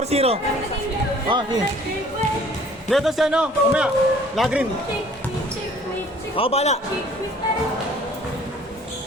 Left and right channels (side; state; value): both; normal; correlation 0.53